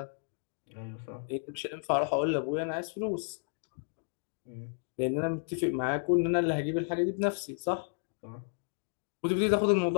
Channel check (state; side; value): silent; right; digital silence